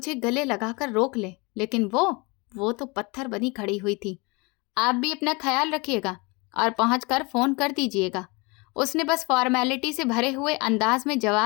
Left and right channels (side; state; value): right; quieter; 27.4 dB